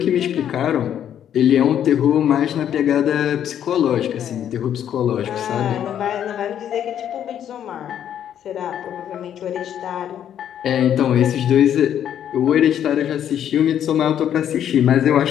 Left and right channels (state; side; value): quieter; right; 9.9 dB